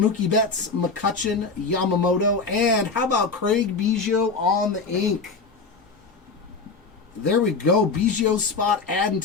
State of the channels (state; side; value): quieter; right; 4.4 dB